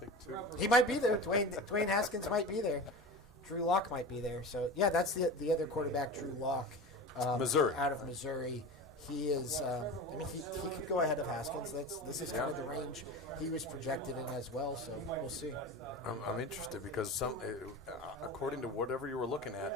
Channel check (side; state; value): both; normal; correlation 0.31